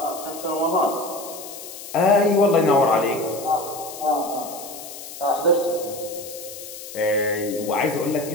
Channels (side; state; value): left; noise; hiss, 12 dB below the sound